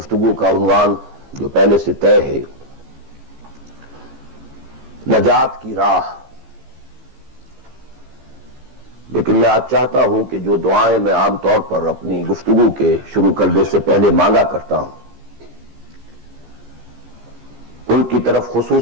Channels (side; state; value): left; late; 15 ms